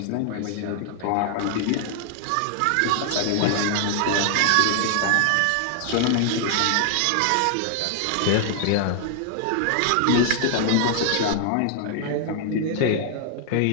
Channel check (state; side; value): different; both; correlation 0.00